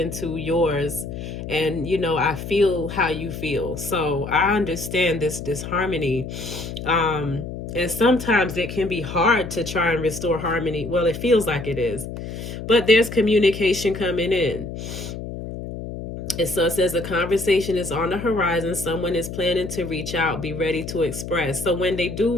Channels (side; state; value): left; noise; hum, 8 dB below the sound